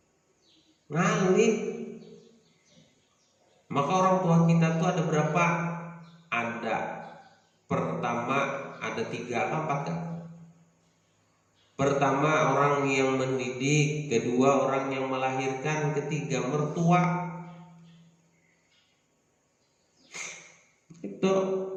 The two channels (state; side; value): identical; both; correlation 1.00